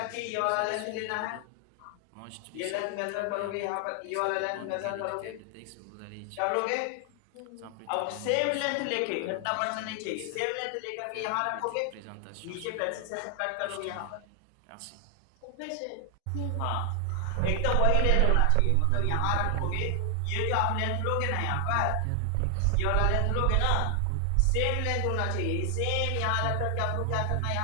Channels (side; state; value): both; different; correlation 0.00